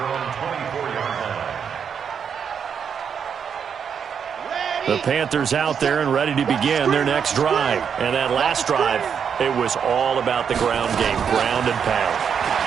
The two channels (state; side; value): quieter; left; 7.2 dB